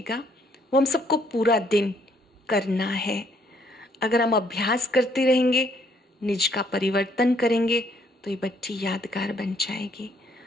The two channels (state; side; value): normal; both; correlation 0.67